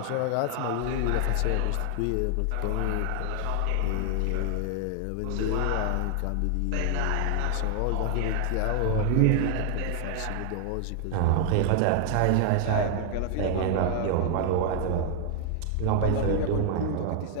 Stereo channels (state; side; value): different; both; correlation 0.00